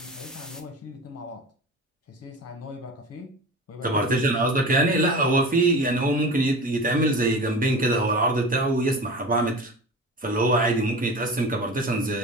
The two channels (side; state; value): both; normal; correlation 0.33